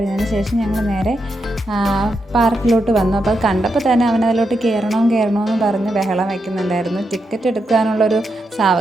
ശേഷം ഞങ്ങൾ നേരെ പാർക്കിലോട്ട് വന്നു. അപ്പോൾ അത് കണ്ടപ്പോൾ തന്നെ അവനതിലോട്ട് കയറണമെന്ന് പറഞ്ഞ് ബഹളം വയ്ക്കുന്നുണ്ടായിരുന്നു. ടിക്കറ്റ് എടുക്കാനുള്ളൊരു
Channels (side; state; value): both; normal; correlation 0.84